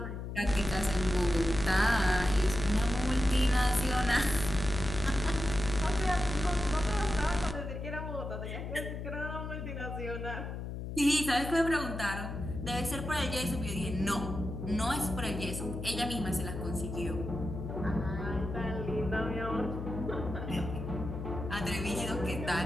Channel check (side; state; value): left; noise; hum, 6 dB below the sound